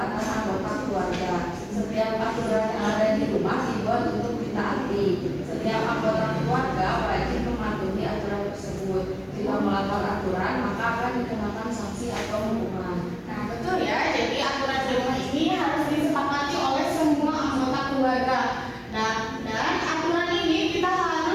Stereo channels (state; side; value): identical; both; correlation 1.00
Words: anggota keluarga. Setiap aturan yang ada di rumah dibuat untuk ditaati. Setiap anggota keluarga wajib mematuhi aturan tersebut. Jika melanggar aturan, maka akan dikenakan sanksi atau hukuman. Nah,